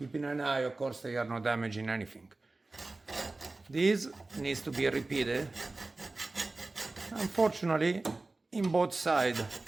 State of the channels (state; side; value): quieter; left; 3.2 dB